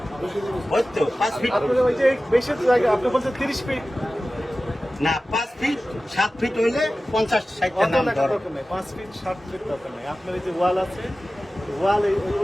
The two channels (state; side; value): normal; both; correlation 0.96